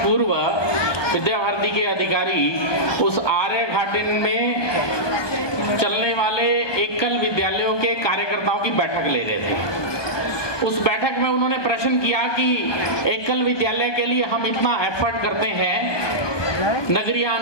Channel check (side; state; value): right; late; 1.2 ms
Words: विद्या भारती के अधिकारी उस आर्य घाटी में चलने वाले एकल विद्यालयों के कार्यकर्ताओं की बैठक ले रहे थे। उस बैठक में उन्होंने प्रश्न किया कि एकल विद्यालय के लिए हम इतना एफर्ट करते हैं, नगरीय